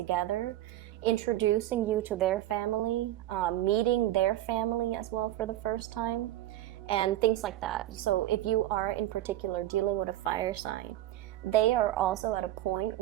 introducing you to their family, meeting their family as well for the first time, and things like that. So if you are in particular dealing with a fire sign, they are also at a point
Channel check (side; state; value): left; quieter; 14.1 dB